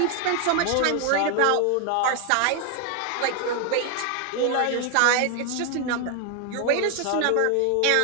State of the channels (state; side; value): different; both; correlation 0.01